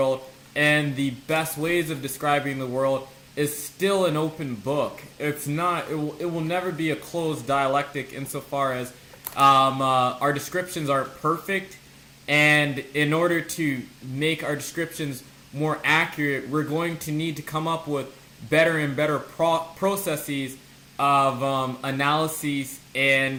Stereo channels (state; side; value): identical; both; correlation 1.00